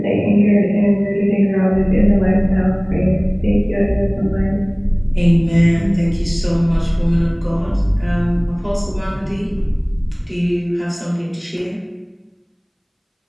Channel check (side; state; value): both; identical; correlation 1.00